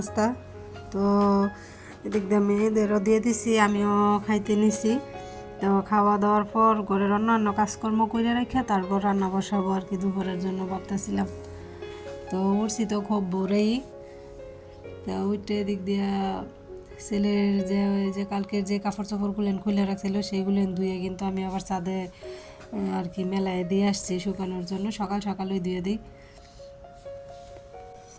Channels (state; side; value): identical; both; correlation 1.00